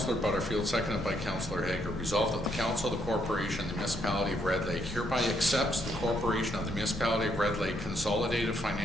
Butterfield, seconded by Councillor Hager. Resolved that the Council of the Corporation, the Municipality of Red Lake, hereby accepts the Corporation of the Municipality of Red Lake consolidated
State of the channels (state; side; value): normal; both; correlation 0.74